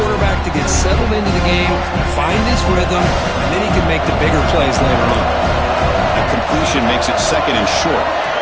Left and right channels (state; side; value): identical; both; correlation 1.00